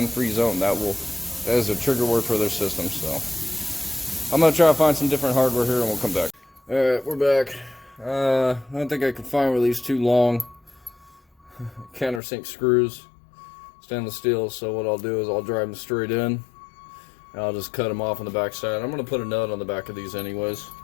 zone. That is a trigger word for their system. So I'm gonna try to find some different hardware here, and we'll come back. All right, we're back. I don't think I can find one of these too long countersink screws, stainless steel. So what I'll do is I'll drive them straight in, and I'll just cut them off on the back side. I'm gonna put a nut on the back of these anyways,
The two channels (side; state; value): right; drops out; at 12.2 s